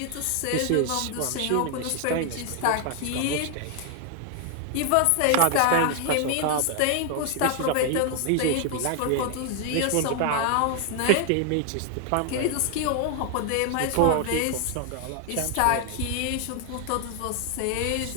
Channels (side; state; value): both; different; correlation 0.00